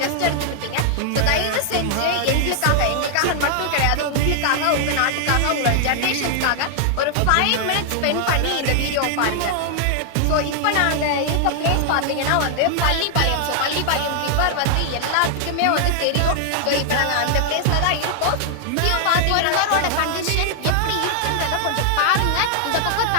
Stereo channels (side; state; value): both; different; correlation 0.00